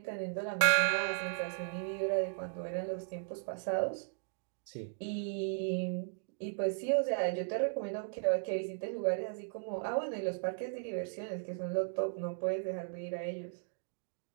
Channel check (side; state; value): left; silent; digital silence